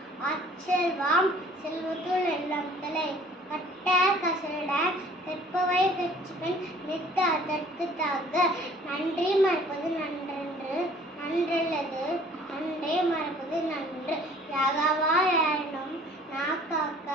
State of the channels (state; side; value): normal; both; correlation 0.53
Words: அச்செல்வாம் செல்வத்துள் எல்லாம் தலை கட்ட கசட கற்பவை கட்சிப்பெண் நித்த அதற்கு தாக நன்றி மறப்பது நன்றென்று நன்றல்லது நன்றே மறப்பது நன்று யாகாவா யாரினும் நாக்காக்க